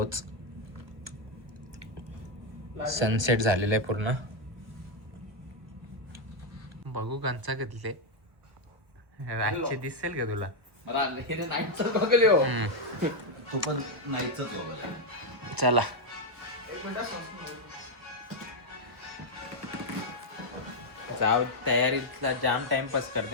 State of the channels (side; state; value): left; late; 1.2 ms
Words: सनसेट झालेला आहे पूर्ण. बघू कंचा कधले रातचे दिसेल का तुला? तू पण नाहीच. चला जाऊ, तयारीतला जाम टाइमपास